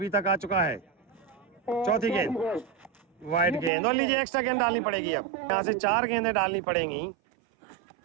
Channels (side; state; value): left; drops out; at 3.7 s